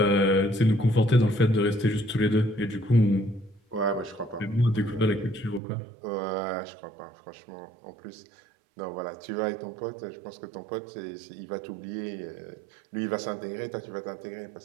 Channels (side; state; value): left; drops out; at 5.6 s